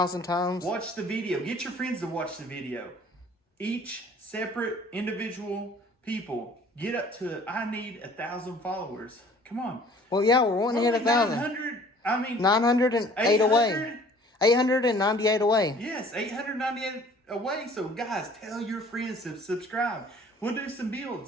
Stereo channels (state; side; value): normal; both; correlation 0.52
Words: times. Watch the video. Get your friends to watch the video. Each separate individual people. Get up to, I need 1,000 followers. Come on. Well, yeah, we're wanting to hit 1,000. 908 away. 898 away. Yes, 898 away. So, guys, tell your friends to subscribe. We'll do some